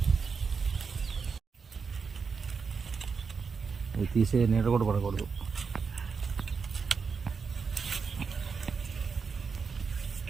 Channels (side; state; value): left; quieter; 5.4 dB